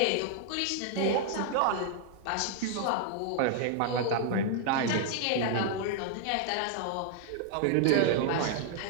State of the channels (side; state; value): both; different; correlation 0.00